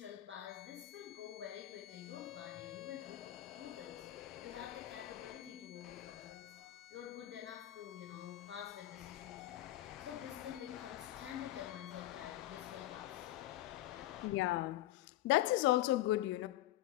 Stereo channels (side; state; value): right; quieter; 14.8 dB